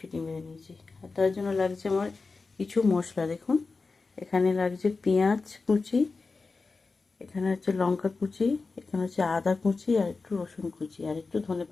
মেরে নিয়েছি। আর তার জন্য লাগছে আমার কিছু মশলা। দেখুন, এখানে লাগছে পেঁয়াজ কুচি, এখানে হচ্ছে লঙ্কা কুচি, এখানে হচ্ছে আদা কুচি, আর একটু রসুন কুচি, আর একটু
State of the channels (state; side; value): quieter; right; 4.1 dB